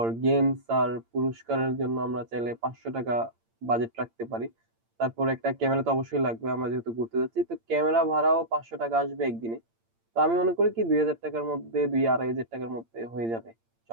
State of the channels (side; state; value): left; late; 8.8 ms